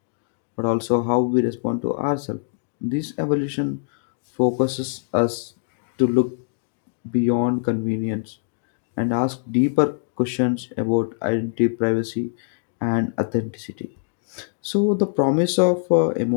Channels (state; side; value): silent; right; digital silence